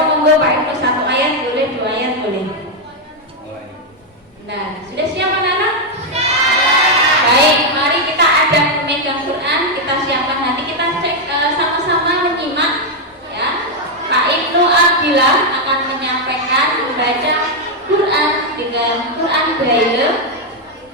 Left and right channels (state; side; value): normal; both; correlation 0.01